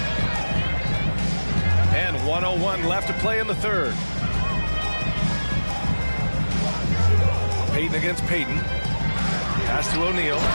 And 1:01 left to play in the 3rd. Payton against Payton. Pass to O'Neal.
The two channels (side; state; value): both; inverted; correlation -1.00